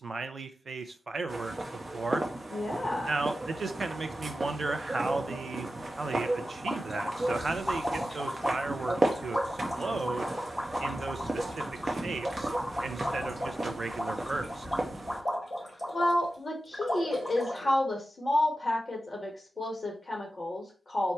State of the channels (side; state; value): both; normal; correlation 0.92